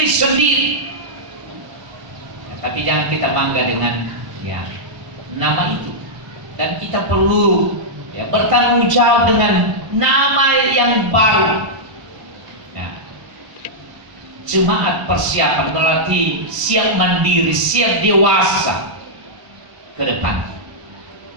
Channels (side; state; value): left; late; 1.0 ms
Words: sendiri. Ya, tapi jangan kita bangga dengan ya nama itu, dan kita perlu ya bertanggung jawab dengan nama yang baru. Jemaat persiapan berarti siap mandiri, siap dewasa ke depan.